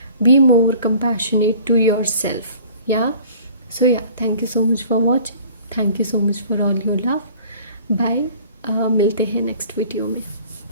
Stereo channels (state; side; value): inverted; both; correlation -0.49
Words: be more compassionate to yourself. Yeah, so yeah, thank you so much for watching. Thank you so much for all your love. Bye. मिलते हैं next video में.